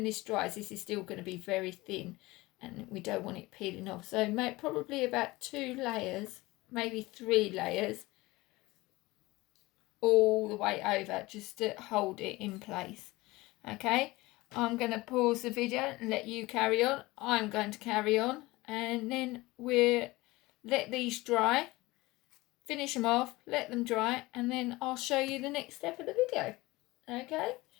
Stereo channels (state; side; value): quieter; right; 20.6 dB